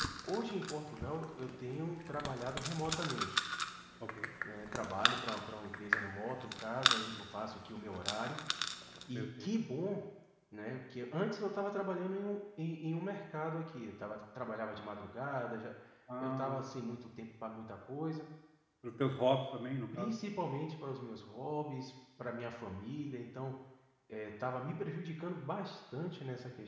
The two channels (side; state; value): both; identical; correlation 1.00